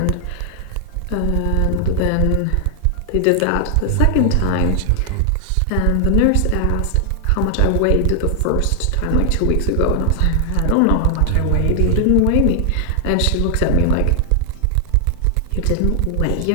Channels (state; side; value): different; both; correlation 0.00